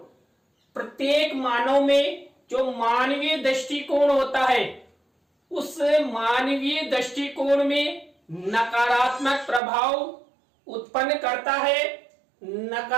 प्रत्येक मानव में जो मानवीय दृष्टिकोण होता है, उस मानवीय दृष्टिकोण में नकारात्मक प्रभाव उत्पन्न करता है।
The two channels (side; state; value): left; drops out; at 9.6 s